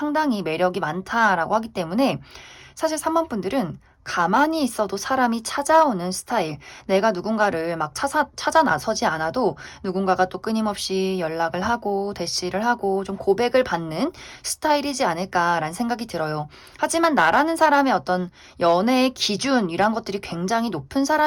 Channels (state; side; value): identical; both; correlation 1.00